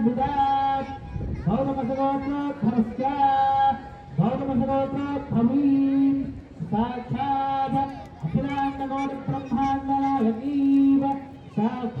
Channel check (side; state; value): both; identical; correlation 1.00